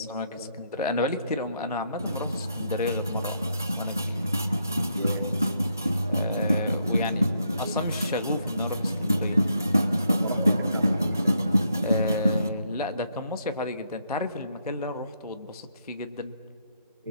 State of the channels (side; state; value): both; inverted; correlation -0.76